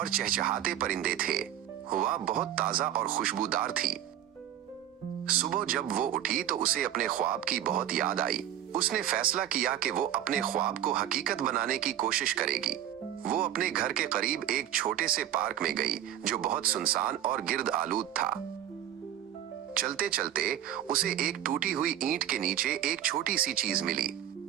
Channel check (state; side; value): quieter; left; 11.3 dB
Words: चहचहाते परिंदे थे। हवा बहुत ताजा और खुशबूदार थी। सुबह जब वो उठी तो उसे अपने ख्वाब की बहुत याद आई। उसने फैसला किया कि वो अपने ख्वाब को हकीकत बनाने की कोशिश करेगी। वो अपने घर के करीब एक छोटे से पार्क में गई जो बहुत सुनसान और गिर्द आलूद था। चलते चलते उसे एक टूटी हुई ईंट के नीचे एक छोटी सी चीज मिली।